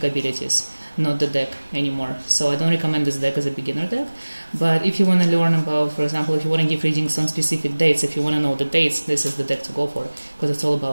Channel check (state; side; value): inverted; both; correlation -1.00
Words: abilities, not the deck anymore. So I don't recommend this deck as a beginner deck. But if you want to learn about, for example, if you want to give readings on specific dates, if you want to know the dates, this is the deck to go for, because it's all